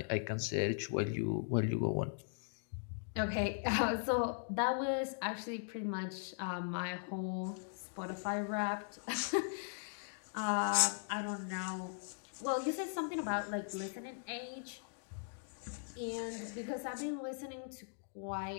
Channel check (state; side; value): silent; right; digital silence